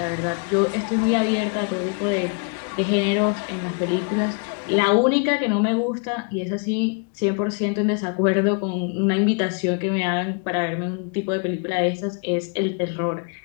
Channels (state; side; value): quieter; right; 37.4 dB